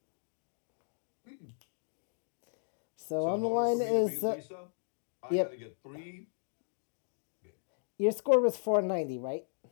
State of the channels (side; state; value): right; silent; digital silence